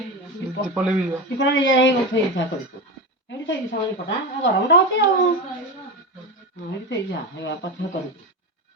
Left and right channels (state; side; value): normal; both; correlation 0.20